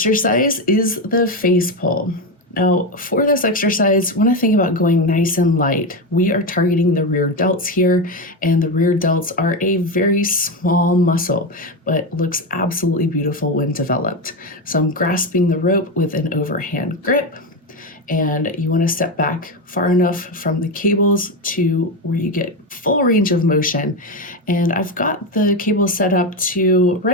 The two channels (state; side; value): normal; both; correlation 0.13